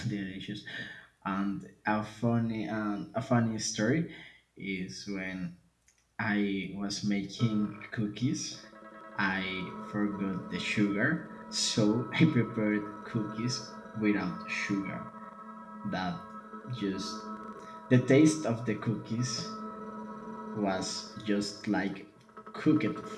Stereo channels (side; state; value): both; identical; correlation 1.00